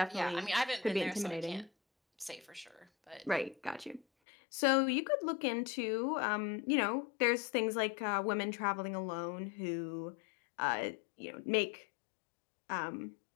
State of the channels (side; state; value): right; drops out; at 4.0 s